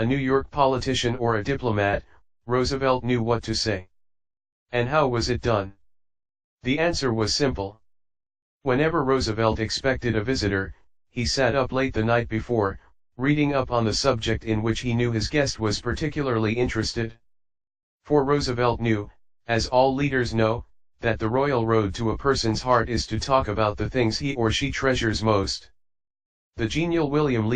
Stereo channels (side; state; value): both; identical; correlation 1.00